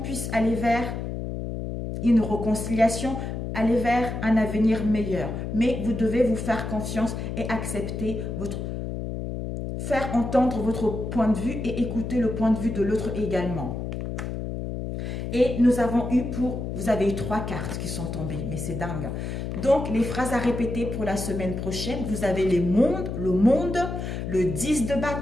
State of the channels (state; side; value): noise; left; hum, 5 dB below the sound